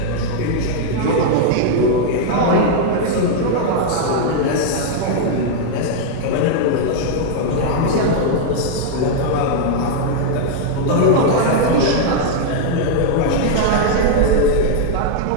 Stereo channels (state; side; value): different; both; correlation -0.01